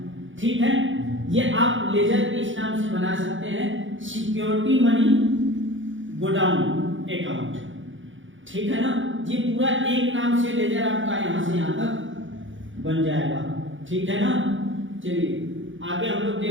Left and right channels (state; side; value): late; left; 0.56 ms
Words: ठीक है, ये आप लेजर इस नाम से बना सकते हैं, सिक्योरिटी मनी गोडाउन अकाउंट। ठीक है ना, ये पूरा एक नाम से लेजर आपका यहां से यहां तक बन जाएगा। ठीक है ना, चलिए आगे हम लोग